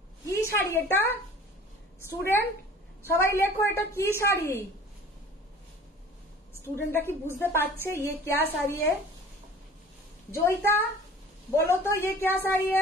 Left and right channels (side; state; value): both; normal; correlation 0.45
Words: কি শাড়ি এটা? স্টুডেন্ট সবাই লেখো এটা কি শাড়ি? স্টুডেন্টরা কি বুঝতে পারছে ये क्या साड़ी है? जोईता बोलो तो ये क्या साड़ी